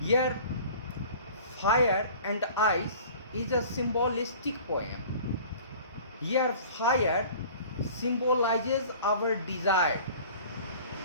Here Fire and Ice is a symbolistic poem. Here fire symbolizes our desire,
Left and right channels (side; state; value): both; inverted; correlation -0.45